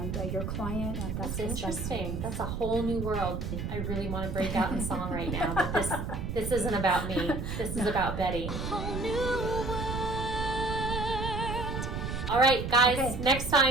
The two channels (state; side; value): noise; right; rumble, 4 dB below the sound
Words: your client. And That's just interesting. That's a whole new world. I really want to break out in song right now, but this isn't about me. This is about Betty. All right, guys, Okay. next